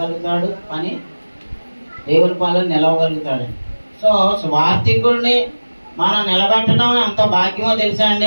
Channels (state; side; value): inverted; both; correlation -1.00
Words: పని దేవుని పనులు నిలవగలుగుతాడు. సో స్వార్థికుడిని మనం నిలబెట్టడం ఎంత భాగ్యమో తెలుసా